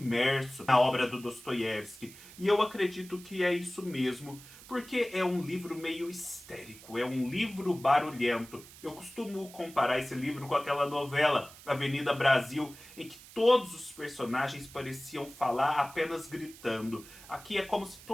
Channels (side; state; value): right; noise; hiss, 19 dB below the sound